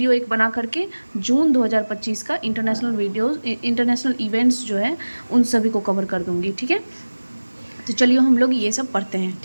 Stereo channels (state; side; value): inverted; both; correlation -1.00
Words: एक बना करके जून 2025 का इंटरनेशनल इवेंट्स जो है उन सभी को कवर कर दूंगी। ठीक है, तो चलिए हम लोग ये सब पढ़ते हैं।